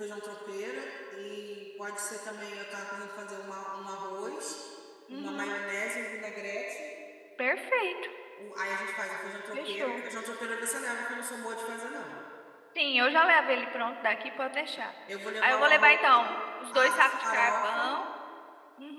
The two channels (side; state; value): both; identical; correlation 1.00